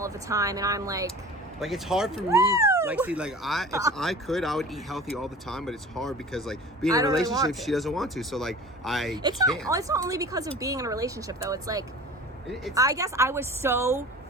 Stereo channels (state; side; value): normal; both; correlation 0.40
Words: of the time, and I'm like it's hard for me. Like, see, like if I could, I would eat healthy all the time, but it's hard because like being in a relationship, she doesn't want to. So like it's not only because of being in a relationship though. It's like I guess I was so